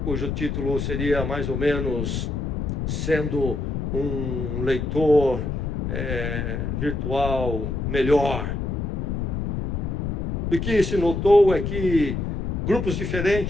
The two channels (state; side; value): noise; left; rumble, 2 dB below the sound